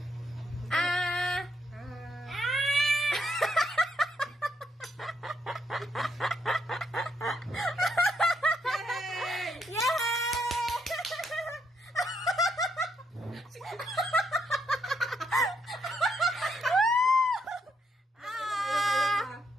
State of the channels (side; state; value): both; normal; correlation 0.76